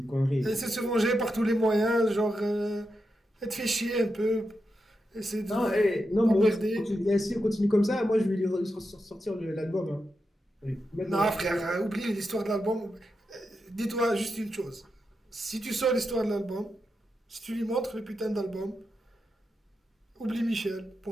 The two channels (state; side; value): normal; both; correlation 0.87